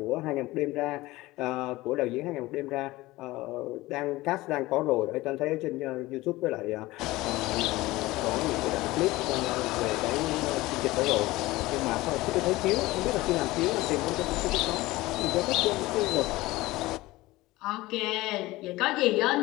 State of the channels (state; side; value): quieter; right; 19.2 dB